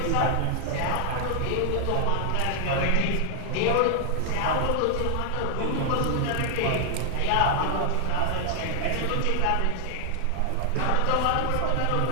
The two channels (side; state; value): both; different; correlation 0.00